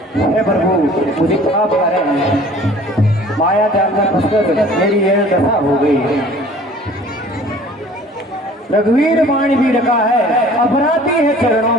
हे प्रभु, मुझे पाप करें, माया जाल में फंसकर मेरी ये दशा हो गई। रघुवीर बाण भी रखा है, अपराधी है चरणों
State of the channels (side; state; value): both; normal; correlation 0.49